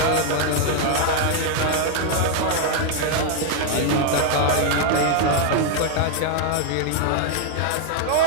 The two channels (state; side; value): different; both; correlation 0.00